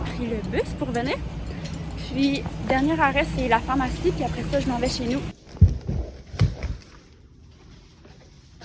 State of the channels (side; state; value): both; identical; correlation 1.00